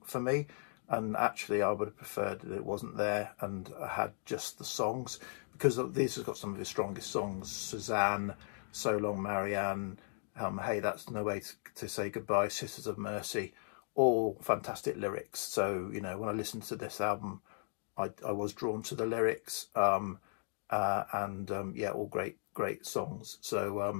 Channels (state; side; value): silent; right; digital silence